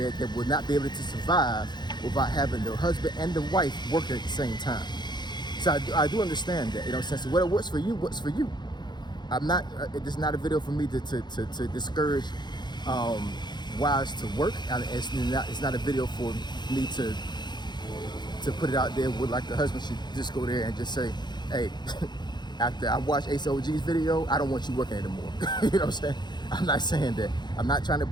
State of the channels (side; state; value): right; late; 0.21 ms